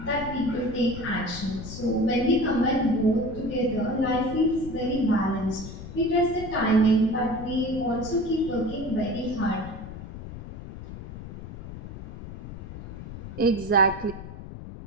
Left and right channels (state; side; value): noise; left; rumble, 12 dB below the sound